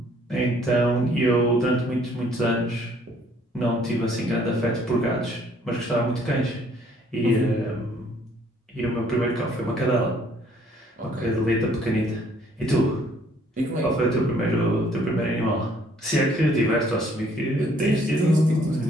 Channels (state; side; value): normal; both; correlation 0.62